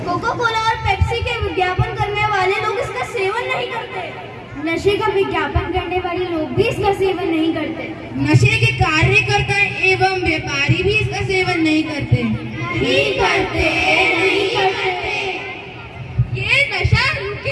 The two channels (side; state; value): both; identical; correlation 1.00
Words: कोका कोला और पेप्सी के विज्ञापन करने वाले लोग इसका सेवन नहीं करते। नशे का विज्ञापन करने वाले लोग भी इसका सेवन नहीं करते। नशे के कार्यकर्ता एवं व्यापारी भी इसका सेवन नहीं करते। नहीं करते, नहीं करते। ये नशा